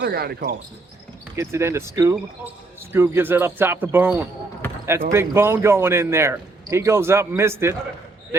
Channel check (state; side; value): quieter; left; 3.3 dB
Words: guy to call. Gets it into Scoob. Scoob gives it up top to Bone. That's Big Bone going in there. He goes up, missed it.